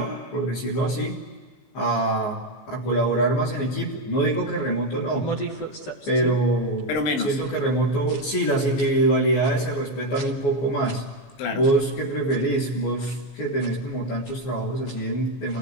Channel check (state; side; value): late; right; 17 ms